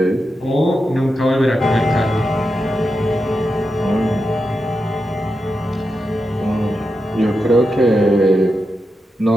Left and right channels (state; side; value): normal; both; correlation 0.88